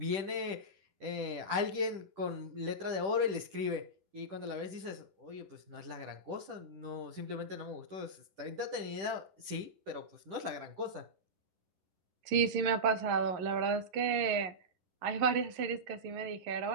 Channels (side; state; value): left; late; 10 ms